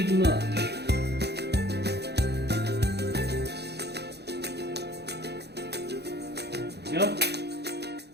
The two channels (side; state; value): left; late; 0.48 ms